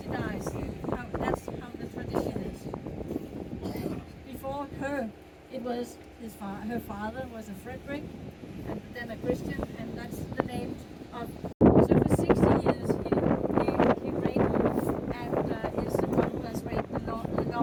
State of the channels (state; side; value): identical; both; correlation 1.00